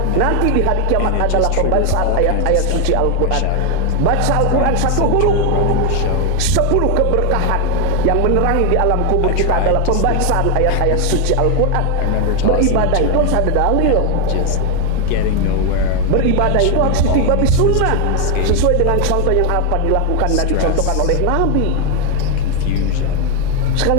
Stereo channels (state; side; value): different; both; correlation 0.01